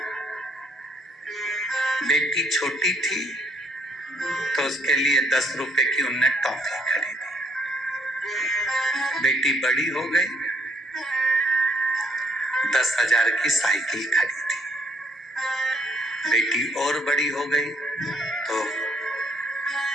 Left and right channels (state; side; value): normal; both; correlation 0.68